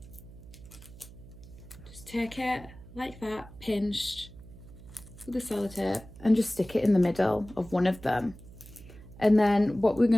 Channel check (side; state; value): right; noise; hum, 18 dB below the sound